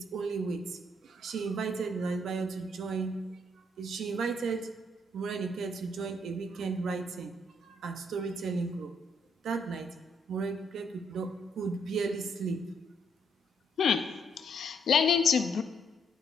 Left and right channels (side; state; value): both; normal; correlation 0.71